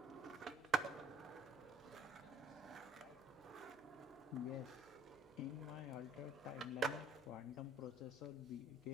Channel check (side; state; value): right; noise; hum, 27 dB below the sound